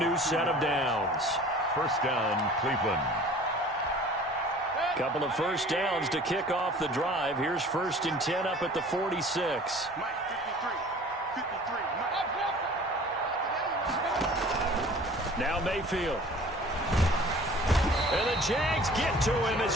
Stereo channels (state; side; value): normal; both; correlation 0.46